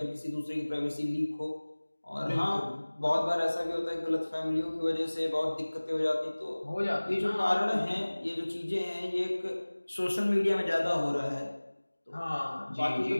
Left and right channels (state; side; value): inverted; both; correlation -1.00